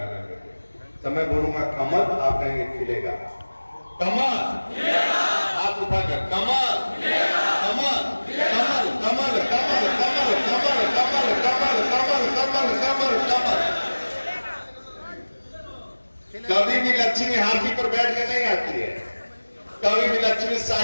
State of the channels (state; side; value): inverted; both; correlation -1.00